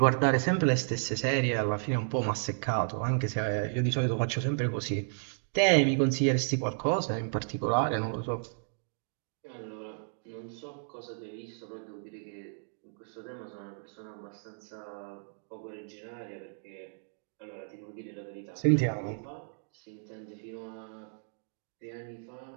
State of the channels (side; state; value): left; silent; digital silence